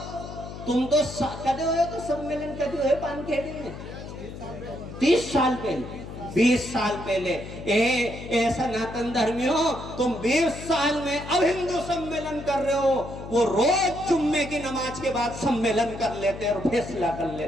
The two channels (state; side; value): noise; left; hum, 11 dB below the sound